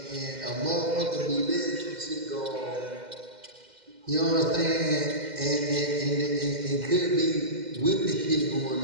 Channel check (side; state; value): left; late; 2.1 ms